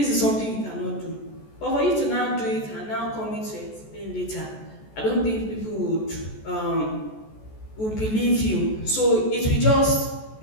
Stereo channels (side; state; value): right; late; 14 ms